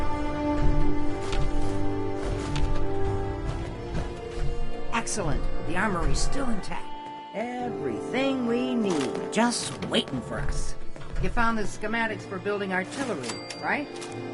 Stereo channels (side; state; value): both; identical; correlation 1.00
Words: Excellent. The armory's still intact. Everything we need, just waiting for us. You found the schematics for building artillery, right?